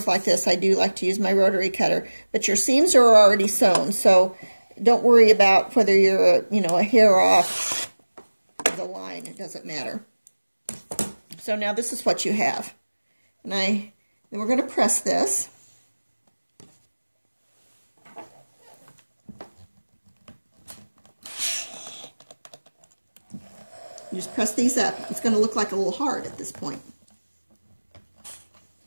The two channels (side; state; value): both; inverted; correlation -1.00